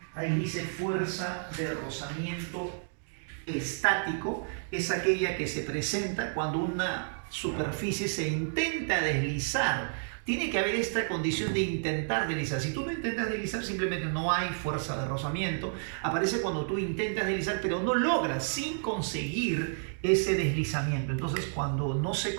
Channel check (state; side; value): silent; left; digital silence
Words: Ahí dice fuerza de rozamiento estático, es aquella que se presenta cuando una superficie se intenta deslizar. Tiene que haber esta condición de intentar deslizar. Si tú no intentas deslizar, simplemente no hay fuerza de rozamiento. Aparece cuando tú intentas deslizar, pero no logras sin conseguir ese deslizamiento. Entonces, cuando no se